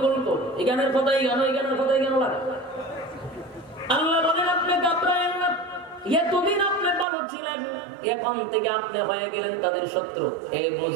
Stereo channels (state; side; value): drops out; left; at 7.1 s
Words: এখানের কথাই কেন, এখানের কথাই কেন লাগে? আল্লাহ বলেন আপনি ঘাবড়ায়েন না, এতদিন আপনি ভালো ছিলেন, এখন থেকে আপনি হয়ে গেলেন তাদের শত্রু। এই